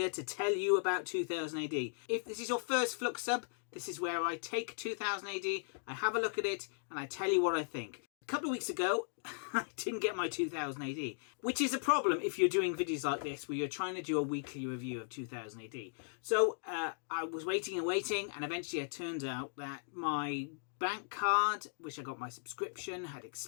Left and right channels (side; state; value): right; silent; digital silence